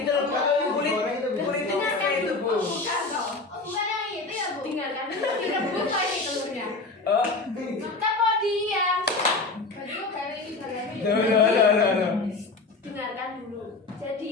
itu loh, kulitnya kayak itu, Bu. Bukan dong. Oh bukan yang itu ya Bu. Dengarkan Direbus lagi telurnya. Oh. kita mau diam. Baju kayak ini bagami. Loh. Dengarkan dulu. Jadi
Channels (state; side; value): quieter; right; 3.6 dB